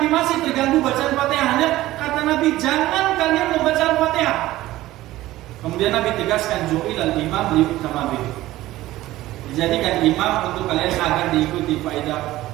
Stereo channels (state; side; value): quieter; left; 16.3 dB